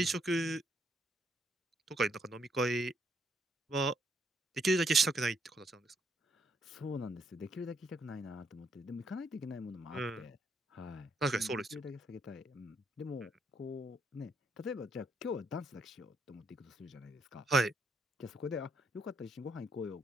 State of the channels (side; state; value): both; normal; correlation 0.73